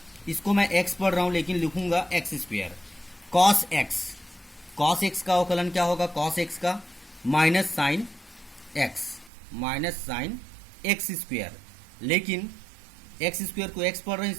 इसको मैं x पढ़ रहा हूं लेकिन लिखूंगा x स्क्वायर, cos x का अवकलन क्या होगा, cos x का माइनस साइन x स्क्वायर, लेकिन x स्क्वायर को x पढ़ रहे हैं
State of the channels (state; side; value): drops out; left; at 9.3 s